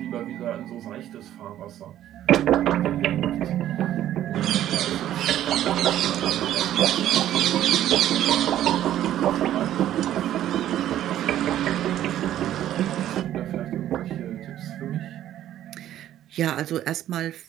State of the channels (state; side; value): quieter; left; 12.1 dB